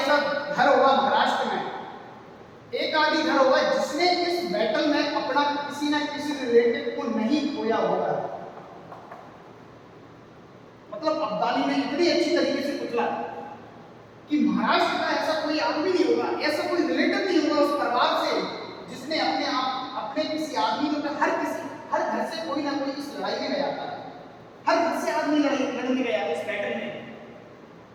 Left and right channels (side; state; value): both; identical; correlation 1.00